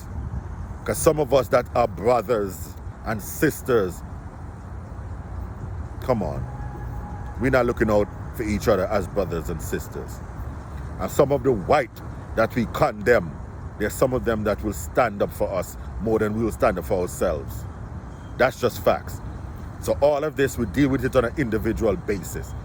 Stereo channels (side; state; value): both; identical; correlation 1.00